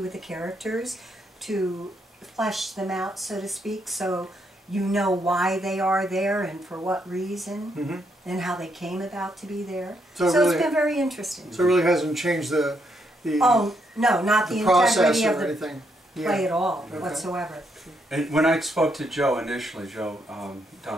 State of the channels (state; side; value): normal; both; correlation 0.76